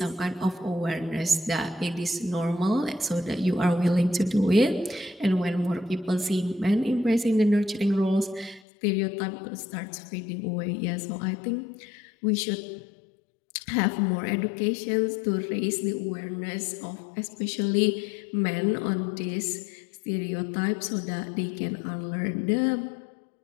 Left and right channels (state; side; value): drops out; right; at 8.6 s